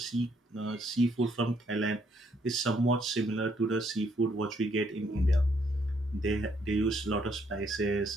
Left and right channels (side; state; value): both; normal; correlation 0.70